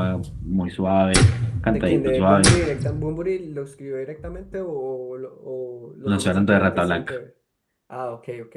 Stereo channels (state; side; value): identical; both; correlation 1.00